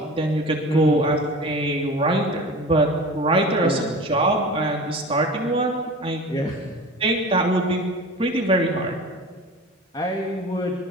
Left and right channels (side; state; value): both; normal; correlation 0.36